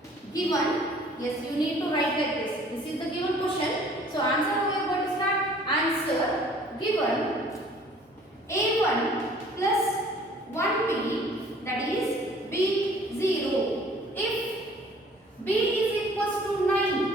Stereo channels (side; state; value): both; normal; correlation 0.53